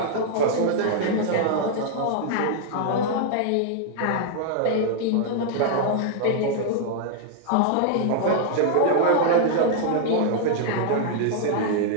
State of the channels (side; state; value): both; different; correlation 0.00